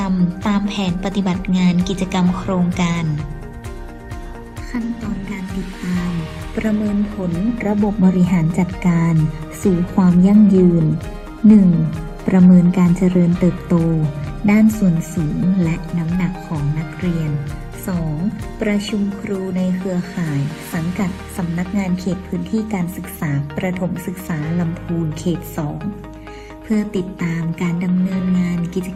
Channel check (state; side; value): identical; both; correlation 1.00